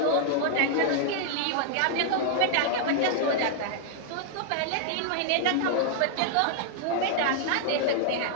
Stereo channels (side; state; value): both; different; correlation -0.01